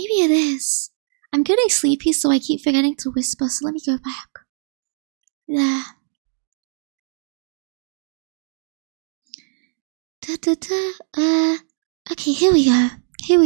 it is. I'm getting sleepy, so I keep forgetting to whisper. So let me go back. Yeah. Okay, here we go.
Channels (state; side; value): silent; left; digital silence